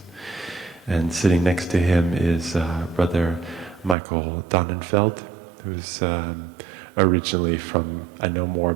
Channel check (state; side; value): drops out; left; at 4.0 s